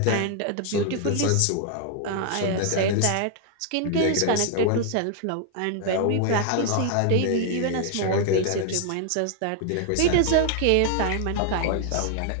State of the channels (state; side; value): different; both; correlation 0.00